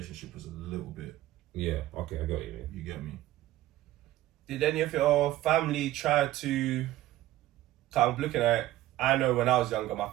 was a little bit. Yeah. Okay, I got you. Man. You get me? Did any of your family try to? I'm looking at. I know when I was younger, my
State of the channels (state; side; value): quieter; left; 15.1 dB